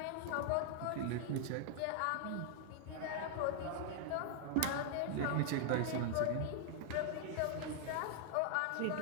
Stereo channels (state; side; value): different; both; correlation -0.01